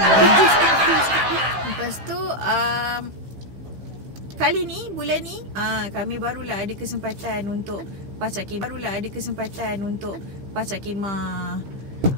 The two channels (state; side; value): late; left; 15 ms